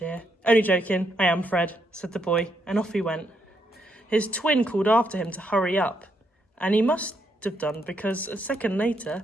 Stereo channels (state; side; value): normal; both; correlation 0.77